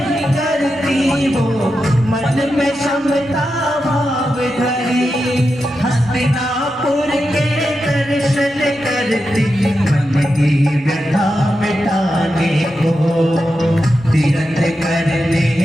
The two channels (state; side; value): normal; both; correlation 0.89